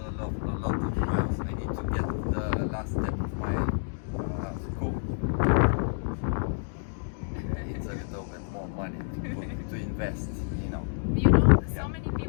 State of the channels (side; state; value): right; silent; digital silence